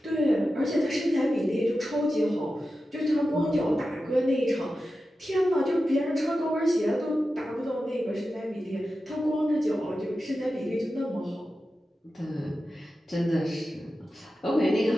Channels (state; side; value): normal; both; correlation 0.92